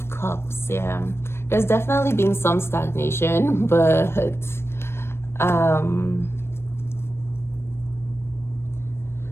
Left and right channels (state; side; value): late; right; 0.12 ms